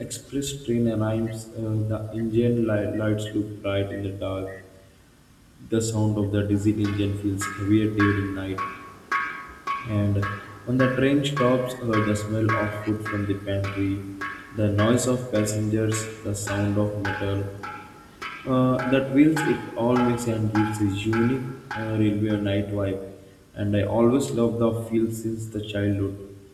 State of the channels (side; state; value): both; identical; correlation 1.00